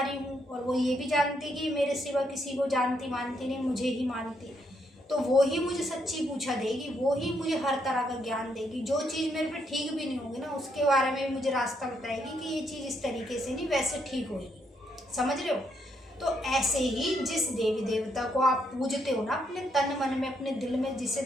हूँ, और वो ये भी जानती कि मेरे सिवा किसी को जानती मानती नहीं, मुझे ही मानती। तो वो ही मुझे सच्ची पूछा देगी, वो ही मुझे हर तरह का ज्ञान देगी। जो चीज़ मेरे पे ठीक भी नहीं होगी ना, उसके बारे में मुझे रास्ता बताएगी कि ये चीज़ इस तरीके से नहीं, वैसे ठीक होगी। समझ रहे हो। तो ऐसे ही जिस देवी देवता को आप पूजते हो ना, अपने तन मन में, अपने दिल में जिसे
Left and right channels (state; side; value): normal; both; correlation 0.76